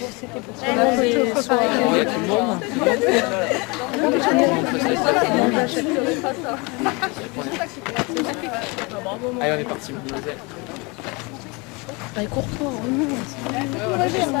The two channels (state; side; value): quieter; right; 28.0 dB